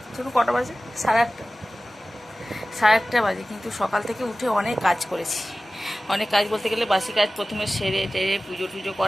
চলো কটা বাজে, 8:30। 8:30 বাজে, কিন্তু সকাল থেকে উঠে অনেক কাজ করেছি। অনেক কাজ বলতে গেলে বাসি কাজ প্রথমে সেরে টেরে পুজো টুজো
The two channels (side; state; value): both; normal; correlation 0.97